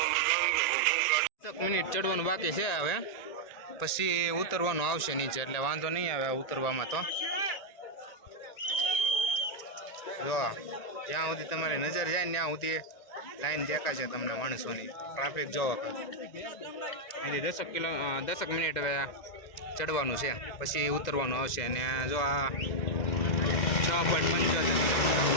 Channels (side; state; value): right; late; 1.9 ms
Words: 10 મિનિટ ચડવાનું બાકી છે હવે પછી ઉતરવાનું આવશે નીચે એટલે વાંધો નહીં આવે ઉતરવામાં. તો જો જ્યાં સુધી તમારી નજર જાય ને ત્યાં સુધી લાઈન દેખાશે તમને માણસોની. ટ્રાફિક જોવો અહીંથી 10 મિનિટ હવે ચડવાનું છે પછી ઉતરવાનું આવશે. અને જો આ